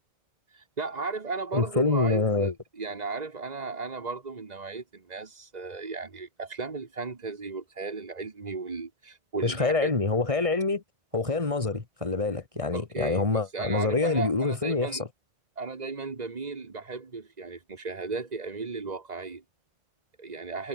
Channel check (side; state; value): left; late; 1.6 ms